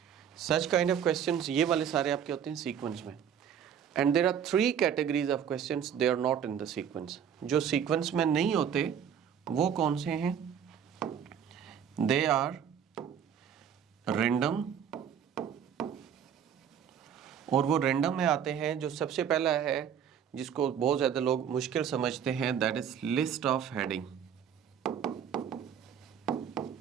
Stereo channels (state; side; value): quieter; left; 8.4 dB